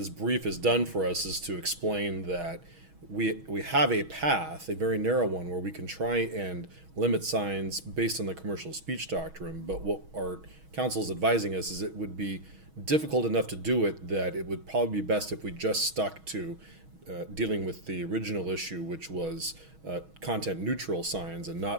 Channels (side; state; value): left; late; 6.2 ms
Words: brief has done for us is to explain that we have a path, a very narrow one, where we can try and limit signs based on the commercial speech doctrine. But what our counsel is advising us is it would be difficult enough to do it that it would probably be best if we just stuck to dealing with the original issue, which was content neutral signs, and not